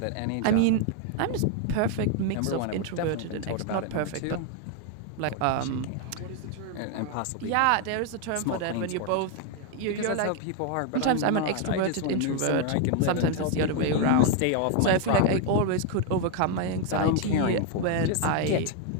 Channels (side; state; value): both; different; correlation 0.01